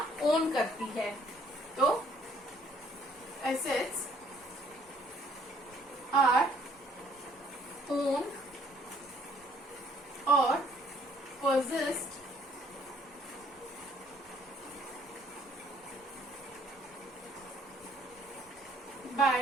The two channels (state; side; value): normal; both; correlation 0.61